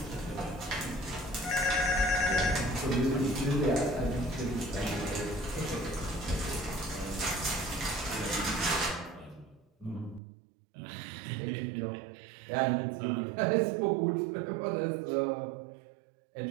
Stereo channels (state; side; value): drops out; left; at 10.2 s